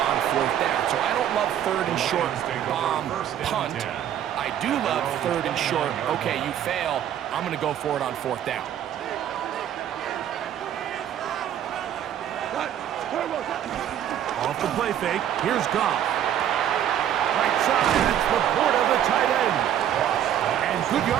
on 4th down. So I don't love 3rd and short bomb punt. I do love 3rd and short, okay, you fail, I'm going to go for it on 4th down. Off the play fake, here's Goff. Right side, it's Laporta, the tight end. And good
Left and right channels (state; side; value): quieter; left; 10.4 dB